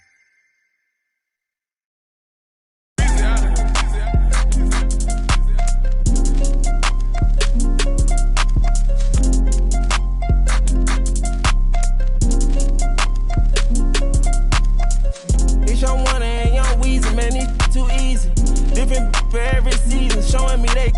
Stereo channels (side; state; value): both; identical; correlation 1.00